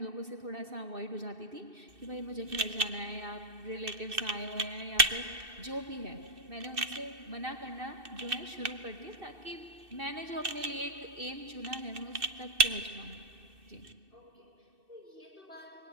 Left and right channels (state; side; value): late; left; 2.6 ms